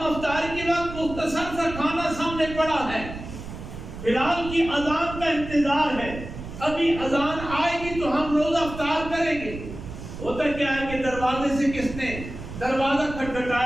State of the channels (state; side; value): noise; right; rumble, 10 dB below the sound